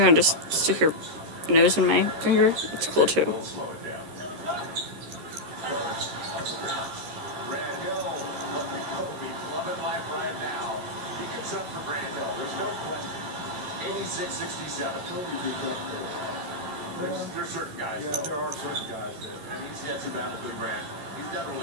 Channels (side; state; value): left; late; 13 ms